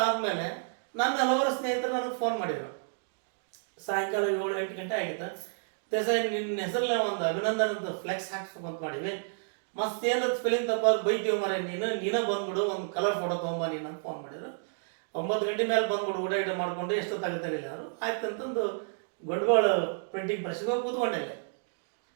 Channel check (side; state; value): left; silent; digital silence